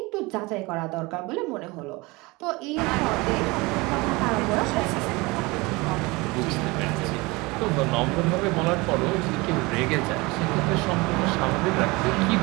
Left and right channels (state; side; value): quieter; left; 24.0 dB